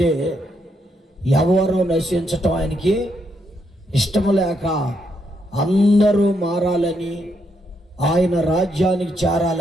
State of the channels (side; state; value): both; normal; correlation 0.78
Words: ఎవరో నశించటం ఆయనకి ఇష్టం లేక అందరూ మారాలని, ఆయన రాజ్యానికి